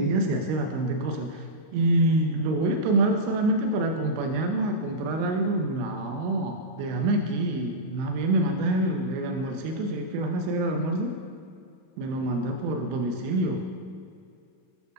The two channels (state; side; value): late; left; 38 ms